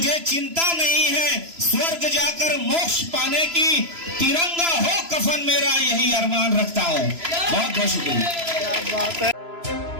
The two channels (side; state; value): left; late; 3.0 ms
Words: चिंता नहीं है स्वर्ग जाकर मोक्ष पाने की, तिरंगा हो कफन मेरा यही अरमान रखता हूं। बहुत बहुत शुक्रिया।